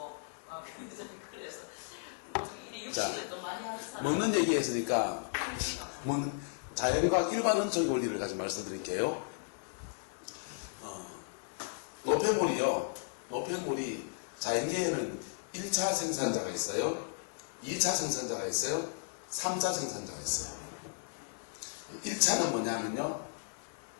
그래서 이래 자, 육식을 또 많이 하는 사람 먹는 얘기 했으니까 자연과학 일반 원칙 원리를 가지고 말씀드릴게요. 노폐물이요. 노폐물이 자연계에는 1차 생산자가 있어요. 2차 생산자가 있어요. 3차 생산자가 있어요. 1차는 뭐냐면요.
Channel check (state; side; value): silent; right; 54 dB below the other